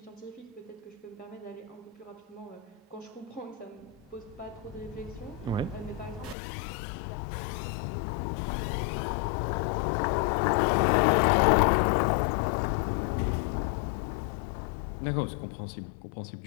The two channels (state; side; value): drops out; right; at 6.4 s